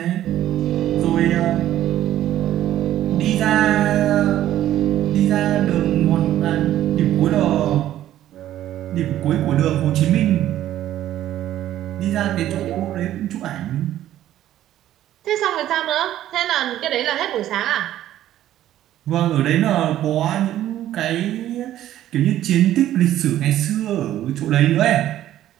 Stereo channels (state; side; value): quieter; left; 12.8 dB